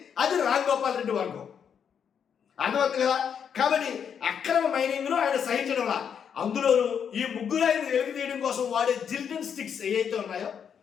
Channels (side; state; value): right; quieter; 7.6 dB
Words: అది రామ్ గోపాల్ రెడ్డి వర్గం. అర్థమవుతుంది కదా. కాబట్టి అక్రమ మైనింగ్ను ఆయన సహించడంలా, అందులోనూ ఈ ముగ్గురు ఆయన వెలికి తీయడం కోసం వాడే జిలిటన్ స్టిక్స్ ఏవైతే ఉన్నాయో